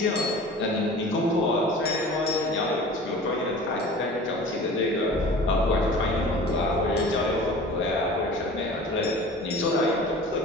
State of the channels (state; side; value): normal; both; correlation 0.41